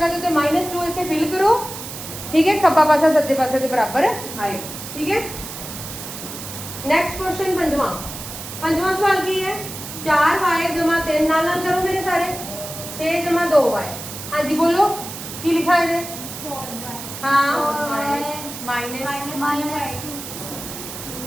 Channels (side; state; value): right; noise; hiss, 10 dB below the sound